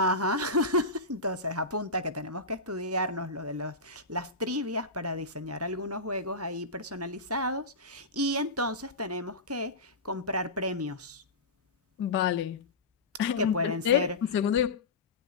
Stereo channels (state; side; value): quieter; right; 3.0 dB